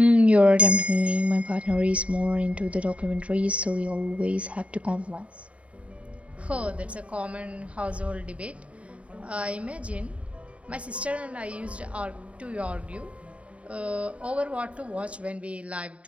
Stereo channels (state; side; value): late; left; 0.064 ms